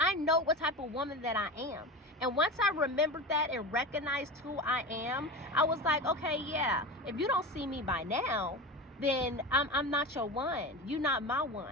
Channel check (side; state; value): both; normal; correlation 0.27